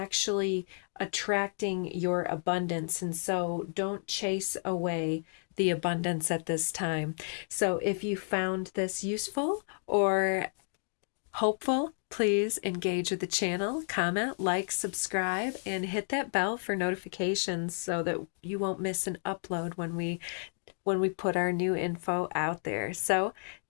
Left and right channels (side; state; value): right; silent; digital silence